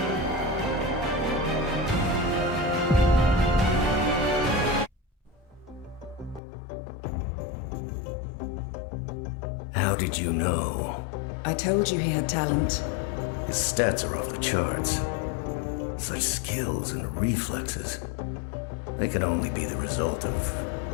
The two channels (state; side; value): drops out; right; at 6.4 s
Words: How did you know? I told you he had talent. His stats are off the charts. Such skills and reflexes. They can only be the result of